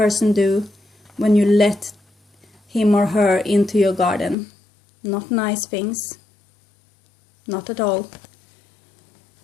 do when you let him or her into your garden? Not nice things. Not at all.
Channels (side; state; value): right; drops out; at 4.4 s